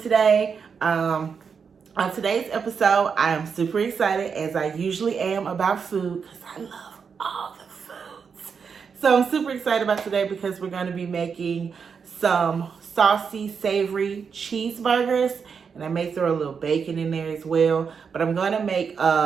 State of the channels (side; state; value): left; quieter; 6.1 dB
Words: On today's episode, I am super excited, as I usually am, about food because I love all the foods. So I'm super excited about today because we're going to be making some saucy, savory cheeseburgers, and I may throw a little bacon in there as well. But I'm going to make